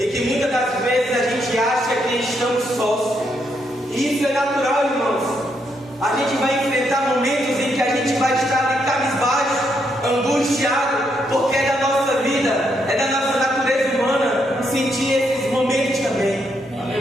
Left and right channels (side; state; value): both; normal; correlation 0.77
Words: que muitas das vezes a gente acha que estamos sós. E isso é natural, irmãos. A gente vai enfrentar momentos em que a gente vai estar ali cabisbaixo, angustiado, porque é da nossa vida, é da nossa natureza humana sentir esses momentos também.